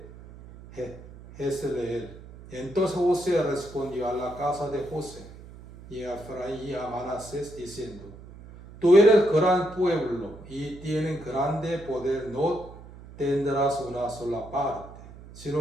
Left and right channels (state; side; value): noise; right; hum, 17 dB below the sound